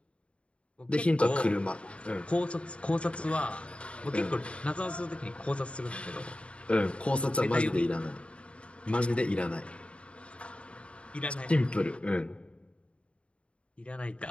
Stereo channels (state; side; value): late; right; 0.060 ms